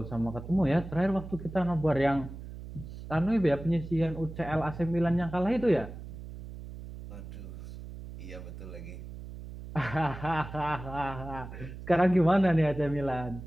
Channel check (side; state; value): right; noise; hum, 12 dB below the sound